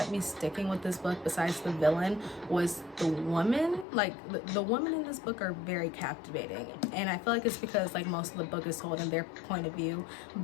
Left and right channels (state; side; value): drops out; right; at 3.9 s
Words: me sticking with this book besides the villain was the woman. Like the women in this book are very captivating, and I feel like it's because like most of the book is told in their point of view.